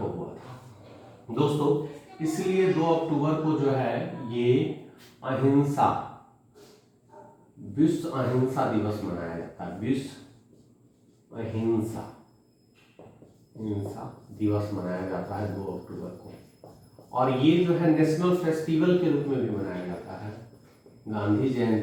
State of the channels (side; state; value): both; identical; correlation 1.00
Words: हुआ था दोस्तों। इसलिए 2 अक्टूबर को जो है ये अहिंसा विश्व अहिंसा दिवस मनाया जाता है। विश्व अहिंसा दिवस मनाया जाता है 2 अक्टूबर को, और ये जो है नेशनल फेस्टिवल के रूप में भी मनाया जाता है। गांधी